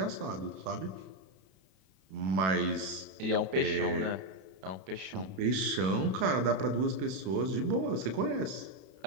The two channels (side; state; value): left; late; 32 ms